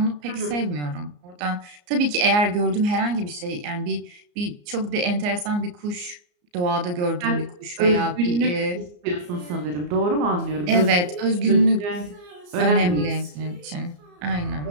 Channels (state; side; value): late; left; 34 ms